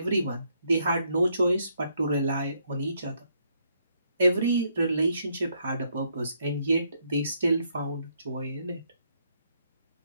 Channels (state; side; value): inverted; both; correlation -0.73